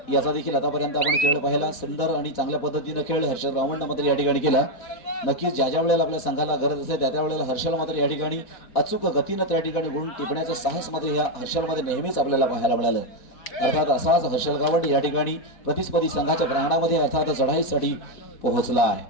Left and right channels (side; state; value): right; late; 4.1 ms